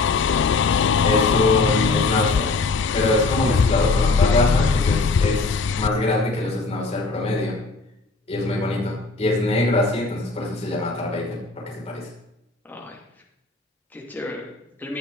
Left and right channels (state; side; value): quieter; right; 3.7 dB